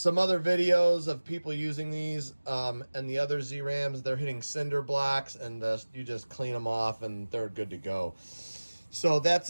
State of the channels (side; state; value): both; inverted; correlation -1.00